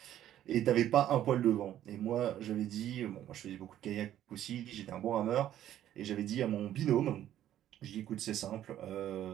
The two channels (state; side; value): quieter; left; 11.9 dB